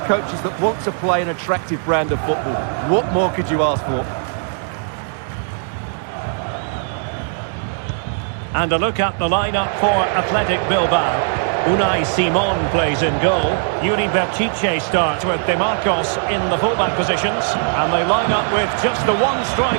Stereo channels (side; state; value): left; silent; 66 dB below the other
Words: coaches that want to play an attractive brand of football. What more could you ask for? And a look at the lineup for Athletic Bilbao. Unai Simon plays in goal. Yuri Berchiche starts with De Marcos in the fullback positions. And they line up with just the one